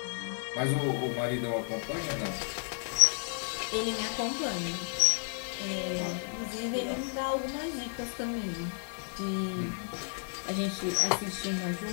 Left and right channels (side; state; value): right; silent; 56 dB below the other